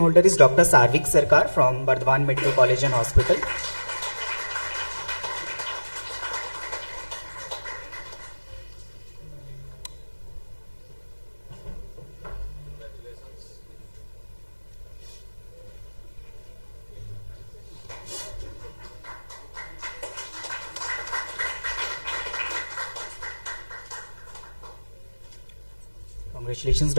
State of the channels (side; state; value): both; inverted; correlation -1.00